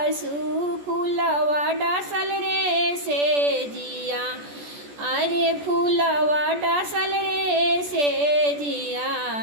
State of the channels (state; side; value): late; left; 14 ms